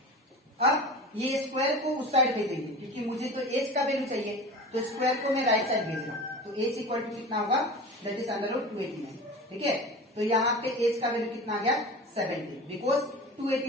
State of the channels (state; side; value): normal; both; correlation 0.34